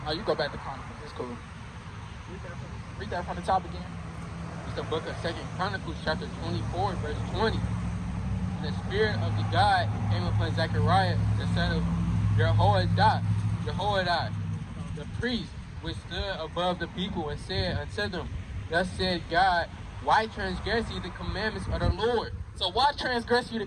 Oh, you go back to Chronicles. It's cool. Read that from the top again. It's the book of 2 Chronicles, chapter 24, verse 20. And the Spirit of the God came upon Zechariah, the son of Jehoiada, the priest, which stood above the people, and said unto them, Thus said God, why transgress ye the commandments of the Lord? So why transgress you the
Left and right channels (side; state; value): both; identical; correlation 1.00